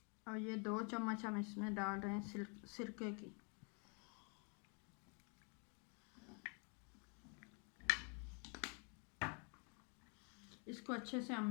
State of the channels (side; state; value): right; quieter; 36.0 dB